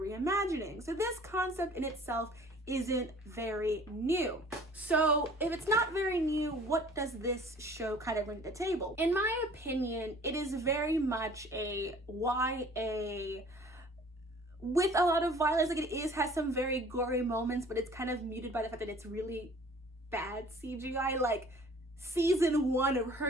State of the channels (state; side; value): normal; both; correlation 0.50